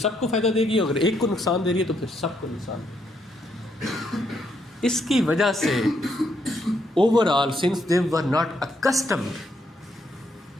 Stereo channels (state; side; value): normal; both; correlation 0.75